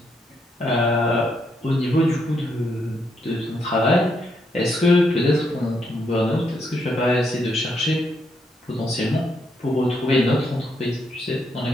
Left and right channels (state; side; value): normal; both; correlation 0.77